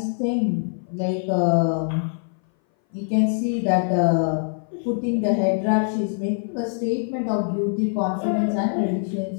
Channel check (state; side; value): silent; right; 59 dB below the other